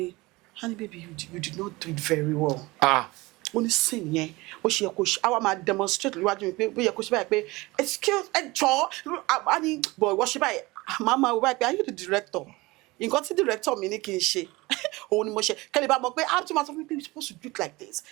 Honey baby, you did not do it very well. Ó ní scene yẹn ó ṣe yẹ kó ṣe àwa máa demonstrate níwájú mi pé ó yẹ kó ṣe báyìí pé excuse a ní boy wọ́n ṣe báyìí màmá wọ báyìí pé are you the director? Nǹkan tí director mi ní kí n ṣe òun ni mo ṣe kẹ́lẹ́ bá mọ̀ pé how to matter you're supposed to do it like this,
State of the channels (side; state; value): left; quieter; 22.0 dB